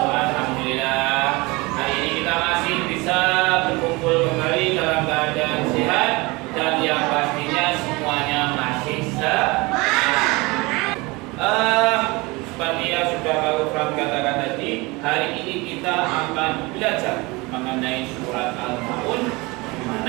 Alhamdulillah. Hari ini kita masih bisa berkumpul kembali dalam keadaan sehat dan yang pastinya semuanya masih seperti yang sudah Pak Ufran katakan tadi, hari ini kita akan belajar mengenai surat Al-Maun, di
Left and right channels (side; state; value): left; quieter; 24.2 dB